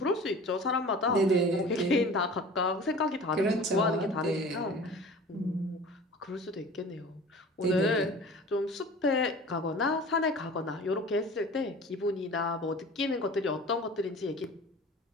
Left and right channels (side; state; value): both; normal; correlation 0.41